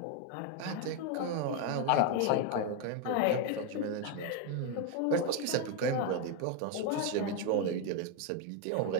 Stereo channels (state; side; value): different; both; correlation 0.01